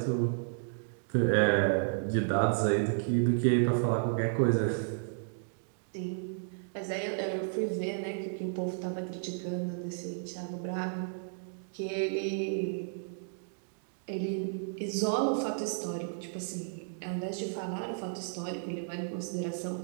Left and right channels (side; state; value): left; silent; digital silence